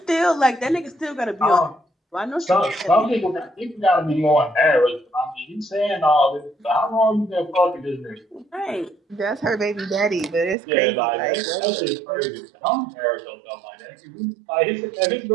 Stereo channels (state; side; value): drops out; left; at 10.6 s